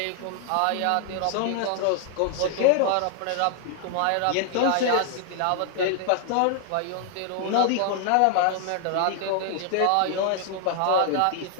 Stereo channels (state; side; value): different; both; correlation 0.00